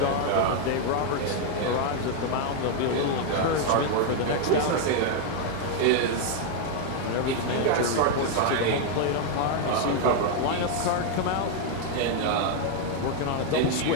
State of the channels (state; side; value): different; both; correlation 0.00